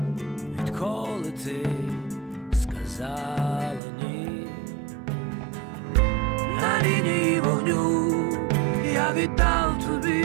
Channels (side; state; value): left; drops out; at 3.8 s